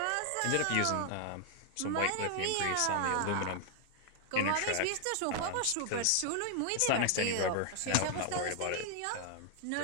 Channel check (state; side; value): different; both; correlation 0.00